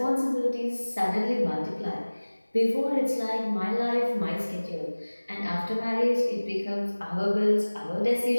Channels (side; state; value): both; inverted; correlation -1.00